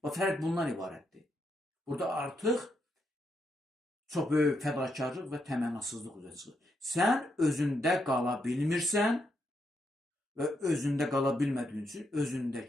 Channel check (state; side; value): normal; both; correlation 0.80